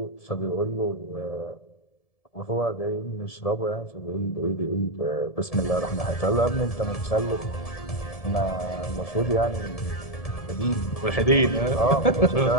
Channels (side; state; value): right; late; 1.7 ms